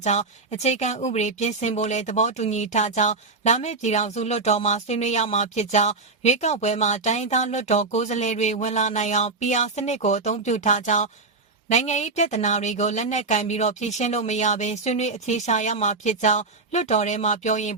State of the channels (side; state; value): left; quieter; 3.8 dB